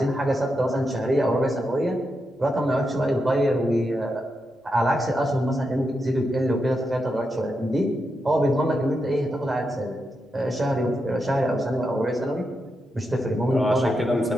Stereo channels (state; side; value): normal; both; correlation 0.86